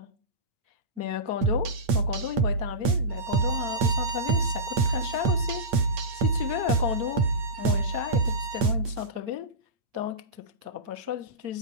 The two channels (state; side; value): late; left; 8.7 ms